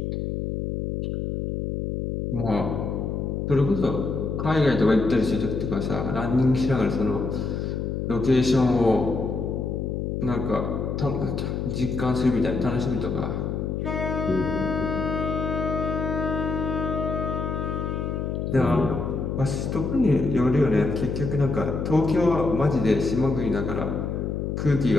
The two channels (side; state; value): left; noise; hum, 2 dB below the sound